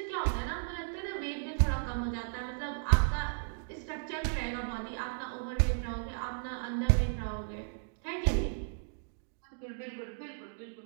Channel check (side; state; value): left; silent; digital silence